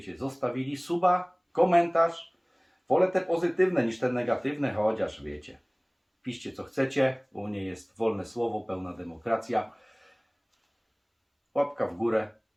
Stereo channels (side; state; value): both; identical; correlation 1.00